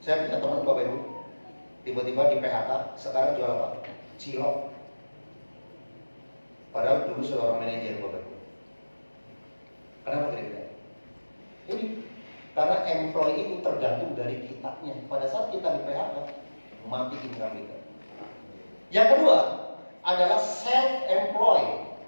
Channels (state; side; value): inverted; both; correlation -1.00